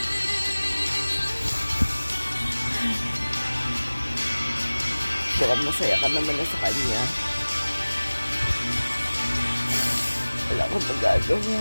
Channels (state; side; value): inverted; both; correlation -1.00